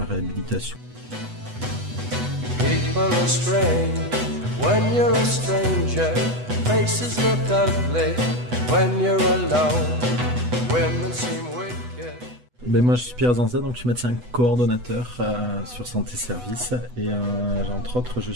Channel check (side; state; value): left; late; 8.1 ms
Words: réhabilitation. People are strange when you're a stranger. Faces look ugly when you're alone. Women seem wicked. Ben moi je suis Pierre Zanza, donc je suis médecin coordonnateur sur santé service et entre autres je